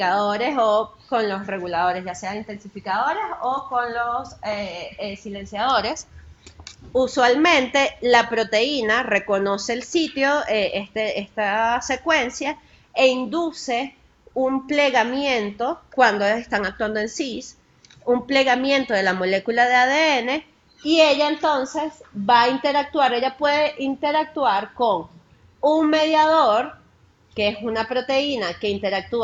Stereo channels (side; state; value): both; identical; correlation 1.00